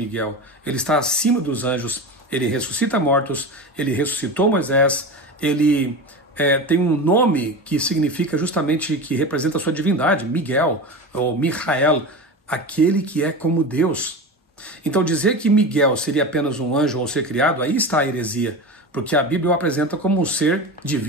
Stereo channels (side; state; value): both; normal; correlation 0.27